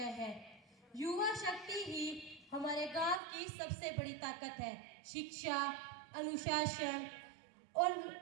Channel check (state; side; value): drops out; left; at 3.2 s